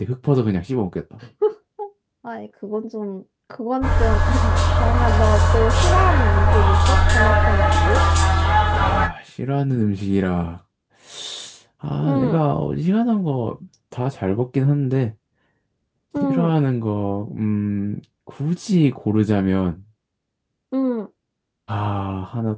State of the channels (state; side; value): identical; both; correlation 1.00